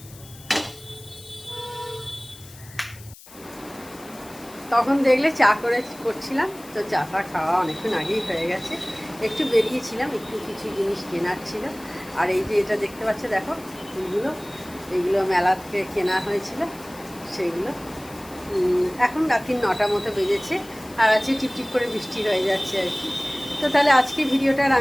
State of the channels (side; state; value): left; noise; hiss, 20 dB below the sound